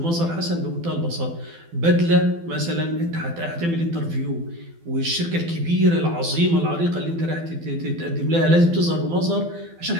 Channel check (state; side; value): late; left; 12 ms